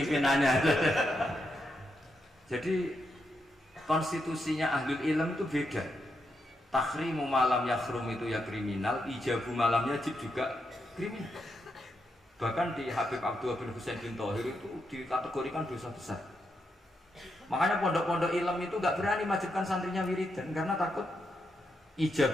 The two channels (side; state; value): both; normal; correlation 0.83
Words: Jadi konstitusinya ahlul ilm itu beda. Takhrimu malam yakhrum itu ya kriminal, ijabu malam yajib juga kriminal. Bahkan di Habib Abdullah bin Husain bin Thohir itu dikategorikan dosa besar. Makanya pondok-pondok ilm itu gak berani wajibkan santrinya wiridan karena takut